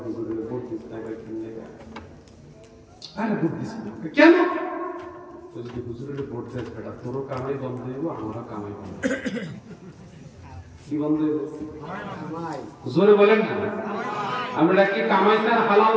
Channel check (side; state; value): both; identical; correlation 1.00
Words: হুজুরের ভোট দিস না, আরে ভোট দিস না কেন? যদি হুজুরের ভোট দেয় বেটা তোরও কামাই বন্ধ হইব, আমারও কামাই বন্ধ। কি বন্ধ হইব? জোরে বলেন না। আমরা কি কামাই চান হালাল